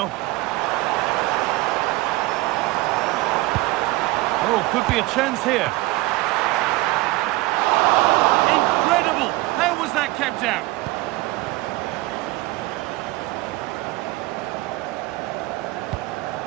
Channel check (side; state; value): left; quieter; 20.0 dB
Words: Oh, could be a chance here. Incredible! How was that kept out?